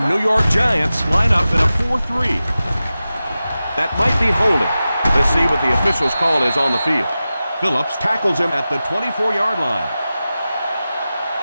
New York Giants line up in a 4-3. That might be holding. Let's see what the official's call is on the field. Phillips tackles him at the 24-yard line.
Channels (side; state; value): both; inverted; correlation -0.94